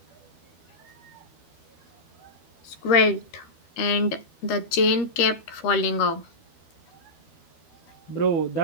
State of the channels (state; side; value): late; right; 12 ms